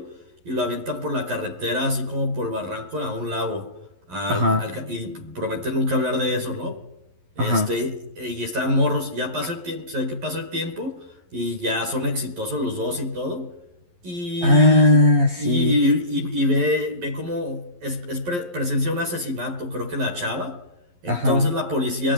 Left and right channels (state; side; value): late; left; 11 ms